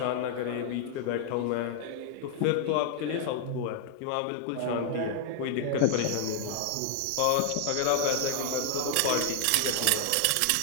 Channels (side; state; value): both; different; correlation 0.00